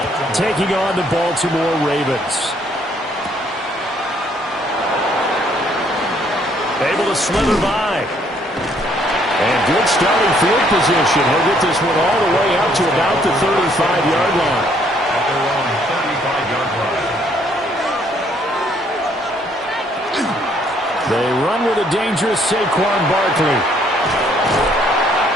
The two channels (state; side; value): normal; both; correlation 0.66